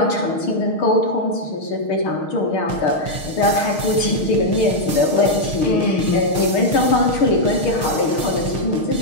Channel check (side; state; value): right; late; 6.5 ms